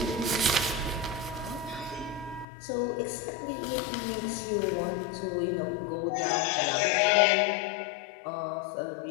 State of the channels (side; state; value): right; drops out; at 2.5 s